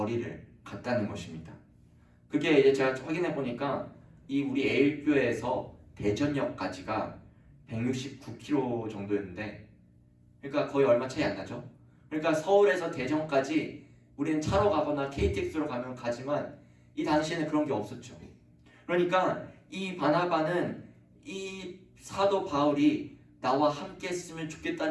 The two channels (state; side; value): identical; both; correlation 1.00